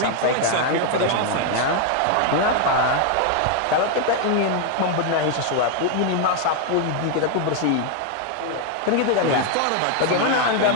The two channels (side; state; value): both; different; correlation 0.01